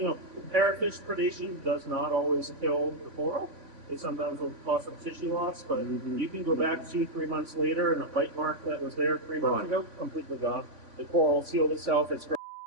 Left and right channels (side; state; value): left; late; 3.5 ms